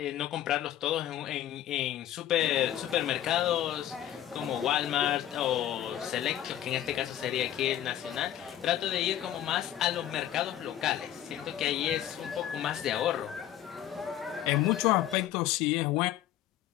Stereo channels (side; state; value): right; quieter; 11.8 dB